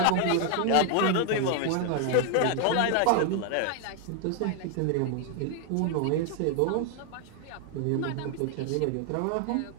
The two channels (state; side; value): different; both; correlation 0.00